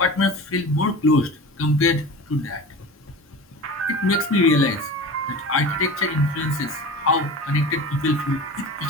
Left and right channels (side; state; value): both; normal; correlation 0.34